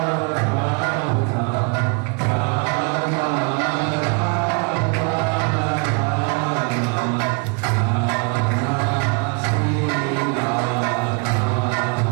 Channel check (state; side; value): quieter; left; 34.7 dB